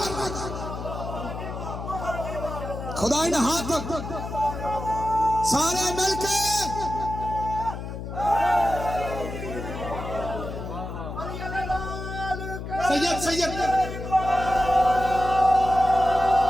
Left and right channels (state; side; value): noise; left; hum, 7 dB below the sound